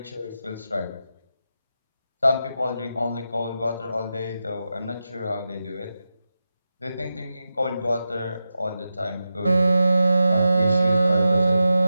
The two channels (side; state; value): both; inverted; correlation -0.90